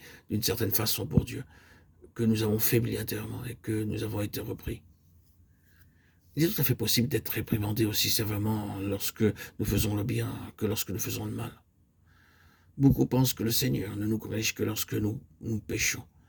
d'une certaine façon pour Dieu, que nous avons faibli intérieurement et que nous avons été repris. Il est tout à fait possible d'être réprimandé aussi sévèrement lorsque nous faisons le bien que lorsque nous faisons le mal. Beaucoup pensent que le Seigneur ne nous corrige que lorsque nous péchons.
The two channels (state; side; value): identical; both; correlation 1.00